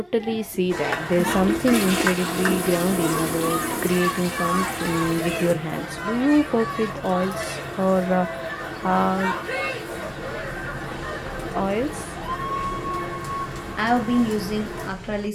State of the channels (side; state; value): both; identical; correlation 1.00